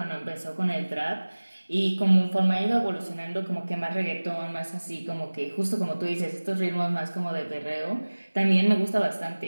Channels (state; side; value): inverted; both; correlation -1.00